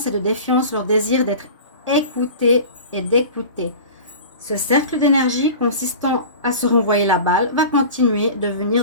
et de défiance leur désir d'être écouté et d'écouter. Ce cercle d'énergie consistant à se renvoyer la balle va continuer de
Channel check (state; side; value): inverted; both; correlation -0.36